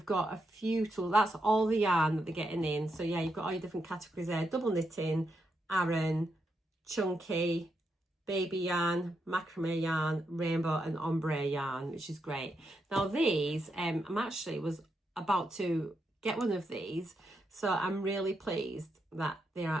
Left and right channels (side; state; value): both; normal; correlation 0.83